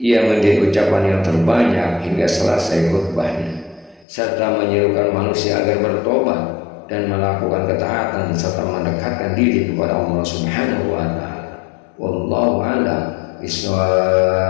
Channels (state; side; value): drops out; right; at 4.0 s